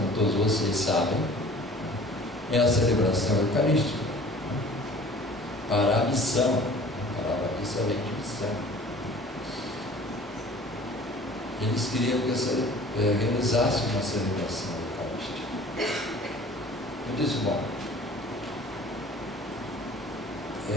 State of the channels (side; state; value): both; normal; correlation 0.47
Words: todos vocês sabem, é a celebração eucarística para a missão. A palavra missa vem de missão. Eles queriam que eu realizasse uma celebração eucarística. Eu disse: bom,